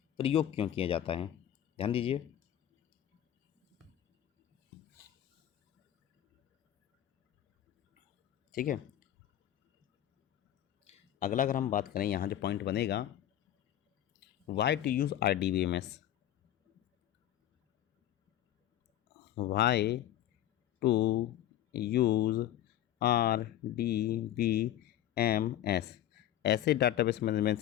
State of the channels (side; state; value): right; quieter; 12.0 dB